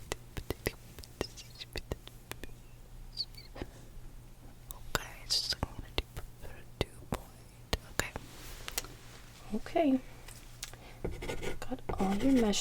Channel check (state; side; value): identical; both; correlation 1.00